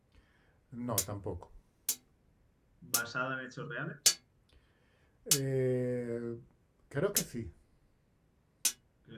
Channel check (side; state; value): both; identical; correlation 1.00